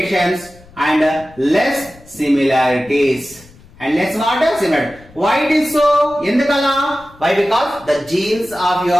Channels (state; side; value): noise; left; rumble, 24 dB below the sound